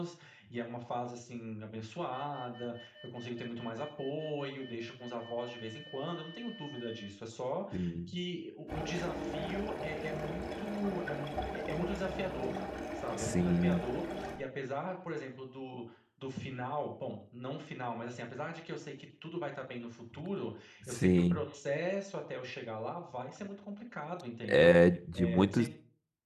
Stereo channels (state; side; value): identical; both; correlation 1.00